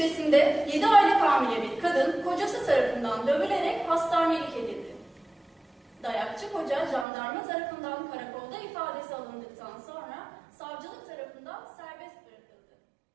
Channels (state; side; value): drops out; left; at 7.1 s